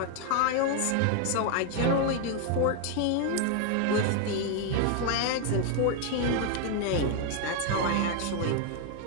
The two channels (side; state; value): both; different; correlation 0.00